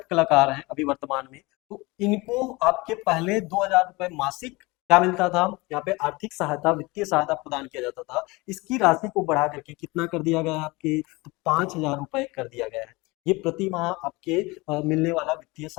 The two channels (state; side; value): quieter; right; 23.9 dB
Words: कलाकार हैं अभी वर्तमान में। तो इनको आपके पहले 2000 रुपए मासिक क्या मिलता था, यहाँ पे आर्थिक सहायता वित्तीय सहायता प्रदान किया जाता था। इसकी राशि को बढ़ा करके कितना कर दिया गया है आपके, तो 5000 रुपए कर दिया गया है। ये प्रति माह आपके मिलने वाला वित्तीय